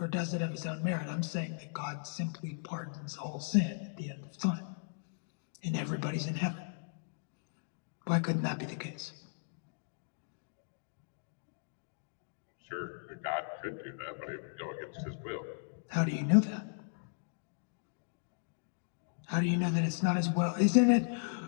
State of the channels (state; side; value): silent; right; digital silence